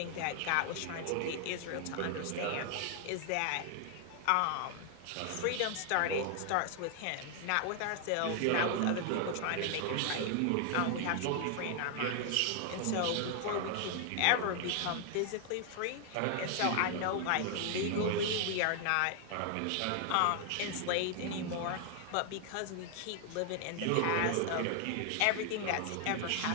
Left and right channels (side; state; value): both; different; correlation 0.00